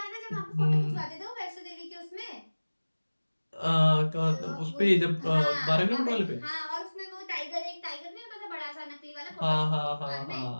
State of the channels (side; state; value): both; inverted; correlation -1.00